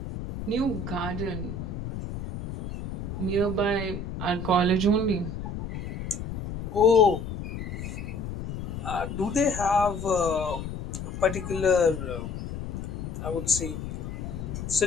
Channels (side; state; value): left; noise; rumble, 6 dB below the sound